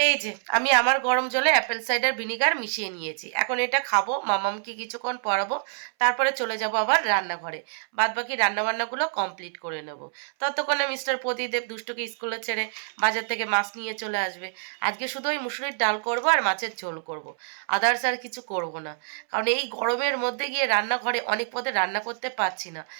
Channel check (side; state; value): left; silent; 61 dB below the other